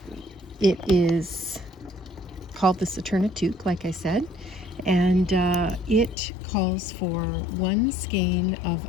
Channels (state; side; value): drops out; right; at 6.2 s